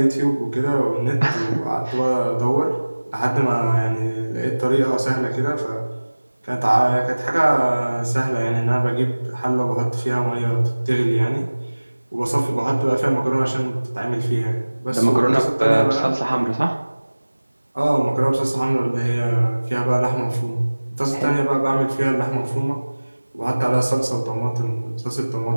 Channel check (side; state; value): both; inverted; correlation -1.00